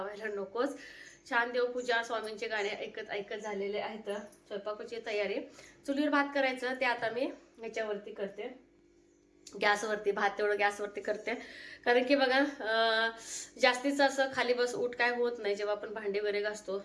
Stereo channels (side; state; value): both; identical; correlation 1.00